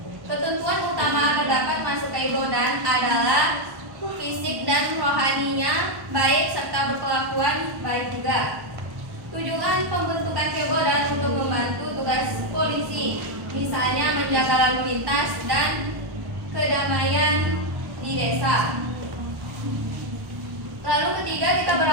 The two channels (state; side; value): late; left; 1.1 ms